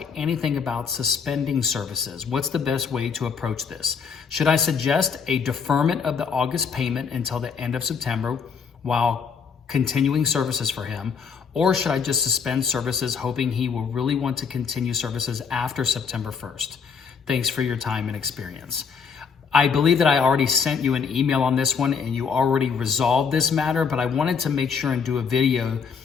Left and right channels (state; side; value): quieter; right; 6.0 dB